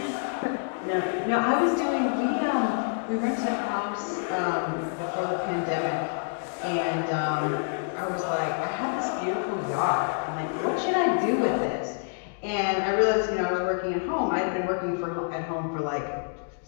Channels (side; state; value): right; silent; digital silence